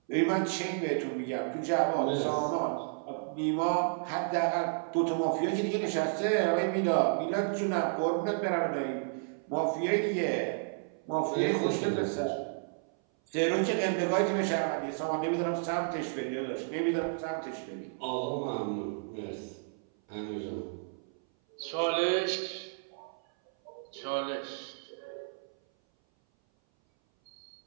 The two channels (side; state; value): left; silent; 57 dB below the other